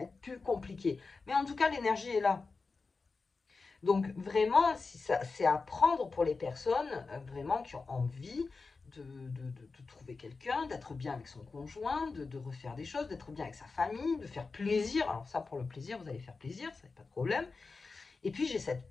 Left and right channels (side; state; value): right; quieter; 4.2 dB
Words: être plus compliqué. Mais en tout cas, l'énergie est là. Donc vraiment, c'est à prendre pour les personnes vraiment qui ont envie de trouver quelqu'un, d'être bien avec son conjoint, de refaire des choses, d'être bien avec sa famille, de faire plaisir. Alors ça, pour le plaisir, vous allez faire plaisir, ça n'est pas de problème. Et puis j'ai cette